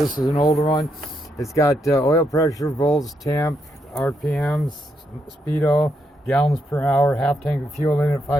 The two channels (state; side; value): normal; both; correlation 0.79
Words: is an older one. It's got oil pressure, volts, temp, RPMs, speedo, gallons per hour, half tank of fuel in it,